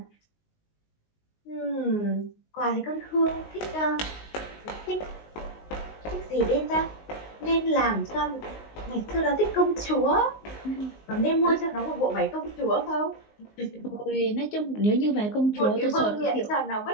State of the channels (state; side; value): late; right; 19 ms